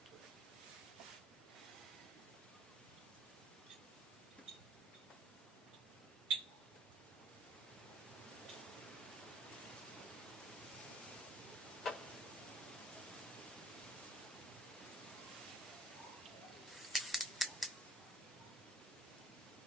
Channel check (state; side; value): normal; both; correlation 0.53